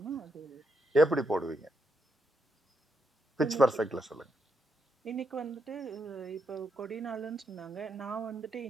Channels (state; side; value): normal; both; correlation 0.81